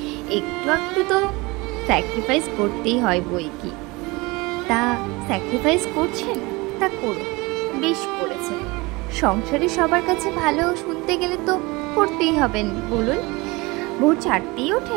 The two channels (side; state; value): left; quieter; 24.1 dB